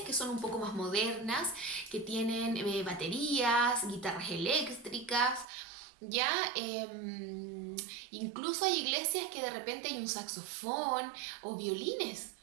que son un poco más modernas, que tienen baterías, guitarras eléctricas, ¿ya? Incluso hay iglesias que de repente hay un saxofón o violines.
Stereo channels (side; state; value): left; drops out; at 5.5 s